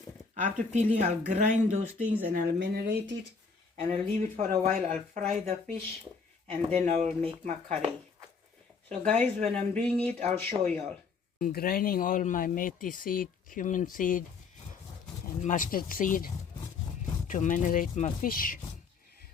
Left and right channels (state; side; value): quieter; right; 5.0 dB